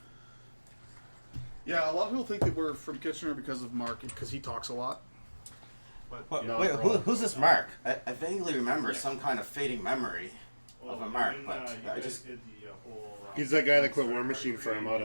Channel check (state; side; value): inverted; both; correlation -1.00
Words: Yeah, a lot of people think that we're from Kitchener because of Mark, because he talks a lot. But No, Wait, wrong. who's this Mark? I vaguely remember some kind of fading memory Well, of a Mark, when, but you I guys just. did the whole. He's that guy that quit Warmachine for